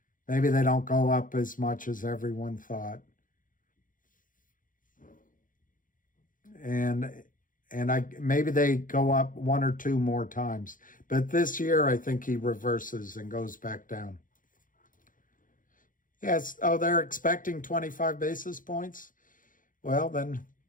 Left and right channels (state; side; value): late; right; 0.39 ms